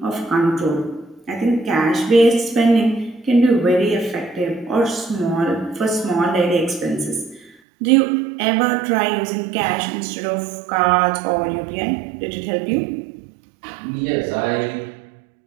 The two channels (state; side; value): drops out; left; at 7.6 s